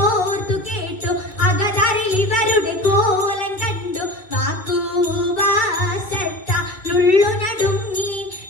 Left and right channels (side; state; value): right; late; 2.6 ms